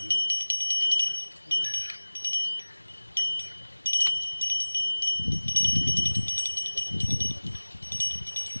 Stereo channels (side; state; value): both; inverted; correlation -1.00